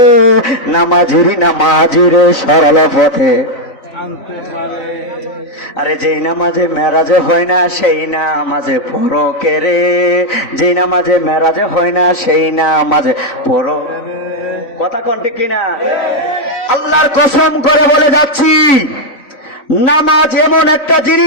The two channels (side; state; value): right; late; 3.5 ms